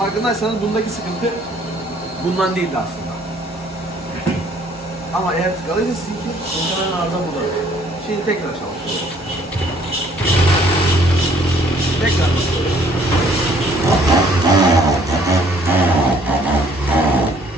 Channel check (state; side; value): normal; both; correlation 0.61